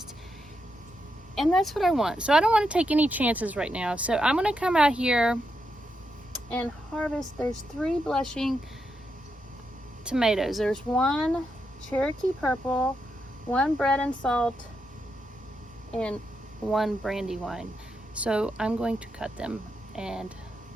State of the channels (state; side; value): normal; both; correlation 0.84